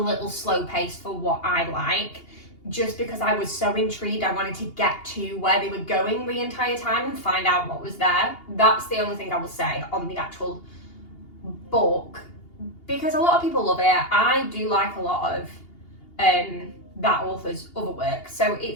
slow paced for what I like, just because I was so intrigued. I wanted to get to where they were going the entire time and find out what was there. That's the only thing I will say on the actual book, because a lot of people love it. I do like a lot of that author's other work, so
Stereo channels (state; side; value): late; right; 2.8 ms